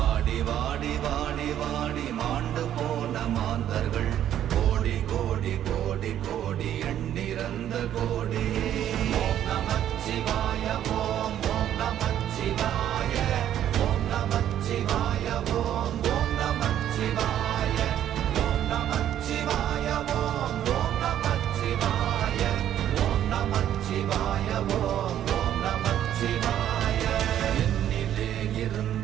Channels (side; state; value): left; quieter; 11.0 dB